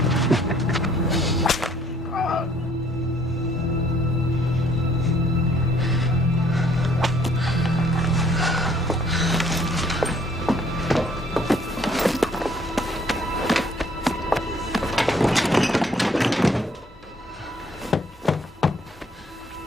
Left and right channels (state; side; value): normal; both; correlation 0.62